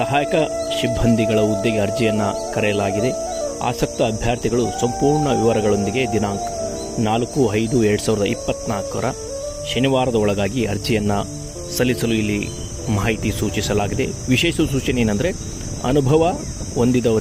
ಸಿಬ್ಬಂದಿಗಳ ಹುದ್ದೆಗೆ ಅರ್ಜಿಯನ್ನು ಕರೆಯಲಾಗಿದೆ. ಆಸಕ್ತ ಅಭ್ಯರ್ಥಿಗಳು ಸಂಪೂರ್ಣ ವಿವರಗಳೊಂದಿಗೆ ದಿನಾಂಕ 4/5/2024 ಶನಿವಾರದ ಒಳಗಾಗಿ ಅರ್ಜಿಯನ್ನು ಸಲ್ಲಿಸಲು ಇಲ್ಲಿ ಮಾಹಿತಿ ಸೂಚಿಸಲಾಗಿದೆ. ವಿಶೇಷ ಸೂಚನೆ ಏನಂದರೆ, ಅನುಭವ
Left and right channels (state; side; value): identical; both; correlation 1.00